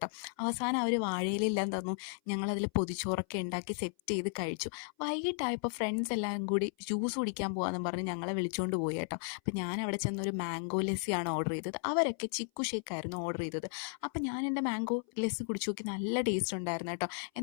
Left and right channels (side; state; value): right; silent; 55 dB below the other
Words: അവസാനം അവർ വാഴയിലെല്ലാം തന്നു. ഞങ്ങളതിൽ പൊതിച്ചോറൊക്കെ ഉണ്ടാക്കി സെറ്റ് ചെയ്ത് കഴിച്ചു. വൈകിട്ടായപ്പോൾ ഫ്രണ്ട്സ് എല്ലാം കൂടി ജ്യൂസ് കുടിക്കാൻ പോകാമെന്ന് പറഞ്ഞ് ഞങ്ങളെ വിളിച്ചുകൊണ്ട് പോയി കേട്ടോ. അപ്പം ഞാൻ അവിടെ ചെന്നൊരു മാംഗോ ലസ്സിയാണ് ഓർഡർ ചെയ്തത്. അവരൊക്കെ ചിക്കു ഷേക്കായിരുന്നു ഓർഡർ ചെയ്തത്. അപ്പം ഞാൻ എൻ്റെ മാംഗോ ലസ്സി കുടിച്ചു നോക്കി, നല്ല ടേസ്റ്റ് ഉണ്ടായിരുന്നു കേട്ടോ.